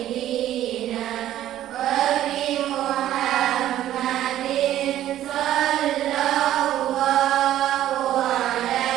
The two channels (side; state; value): left; quieter; 12.7 dB